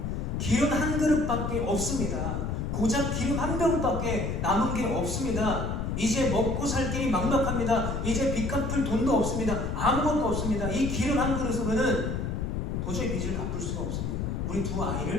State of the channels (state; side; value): noise; left; rumble, 2 dB below the sound